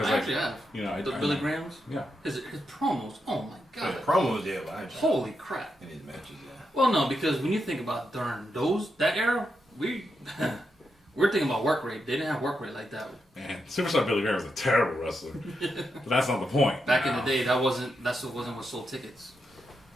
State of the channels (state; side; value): normal; both; correlation 0.84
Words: I actually have. The Billy Grahams. Yeah. His promos. Oh my god. Promos, yeah. But holy crap. In his matches, yeah. Well, no, because when you think about during that era, we're thinking about work rate. They didn't have work rate like that. Man, Superstar Billy Graham was a terrible wrestler. But that's not the point. Back in the day, that wasn't what sold tickets.